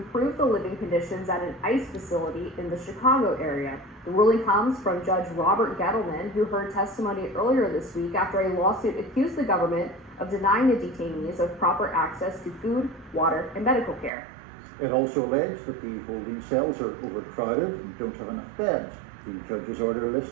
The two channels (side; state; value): left; drops out; at 14.1 s